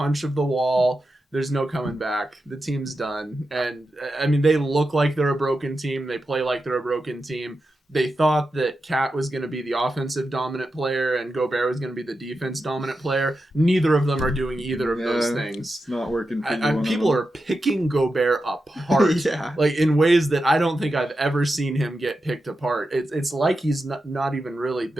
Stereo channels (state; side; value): normal; both; correlation 0.89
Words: of the wall. There's no coming back. The team's done. And, they look like they're a broken team. They play like they're a broken team. They thought that Cat was going to be the offensive dominant player and Gobert was going to be the defense dominant player. Neither of them are doing either of those things. It's not working for people are picking Gobert apart like in ways that I don't think I've ever seen him get picked apart. It's like he's not even really